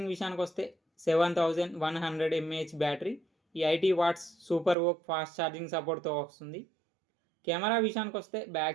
విషయానికి వస్తే 7100 mAh battery, 80 watts super VOOC fast charging సపోర్ట్తో వస్తుంది. కెమెరా విషయానికి వస్తే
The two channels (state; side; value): drops out; left; at 4.8 s